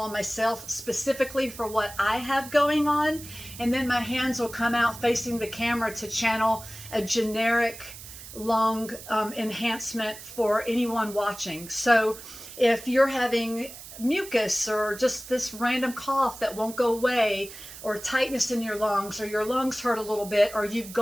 on myself specifically for what I have going on, and then my hands will come out facing the camera to channel a generic lung enhancement for anyone watching. So if you're having mucus or just this random cough that won't go away, or tightness in your lungs, or your lungs hurt a little bit, or you've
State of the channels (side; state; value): right; noise; hiss, 14 dB below the sound